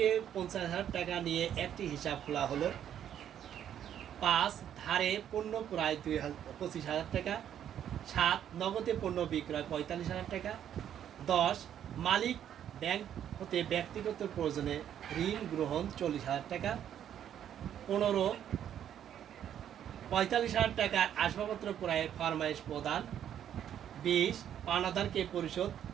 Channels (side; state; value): left; quieter; 9.9 dB